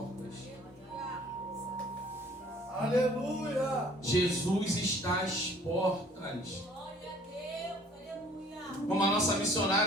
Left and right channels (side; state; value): both; normal; correlation 0.54